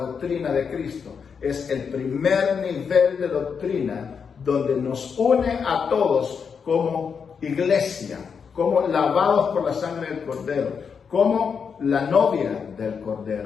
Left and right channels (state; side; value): quieter; right; 6.3 dB